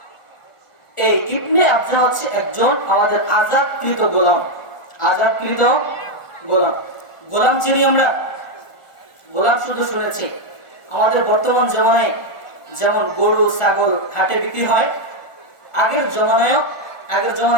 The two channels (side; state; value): right; late; 1.4 ms